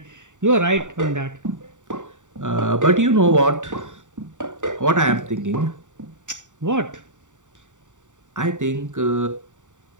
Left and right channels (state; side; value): late; left; 0.86 ms